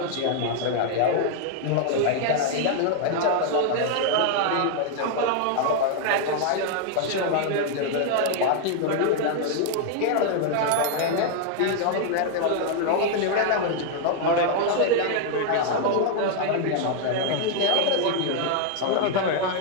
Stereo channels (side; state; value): both; different; correlation 0.00